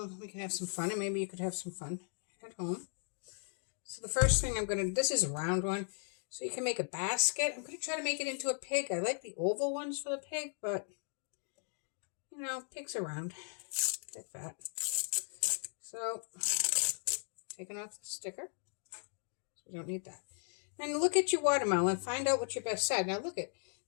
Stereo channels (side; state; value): right; silent; 53 dB below the other